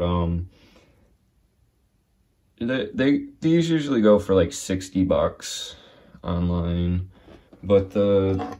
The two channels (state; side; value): identical; both; correlation 1.00